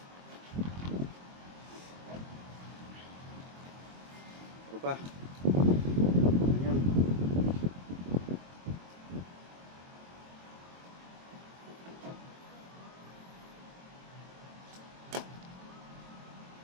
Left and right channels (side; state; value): left; late; 22 ms